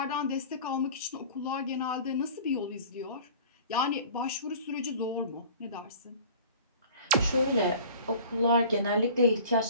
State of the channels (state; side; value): inverted; both; correlation -0.44